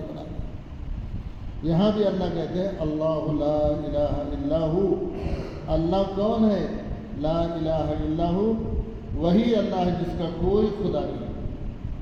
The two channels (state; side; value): identical; both; correlation 1.00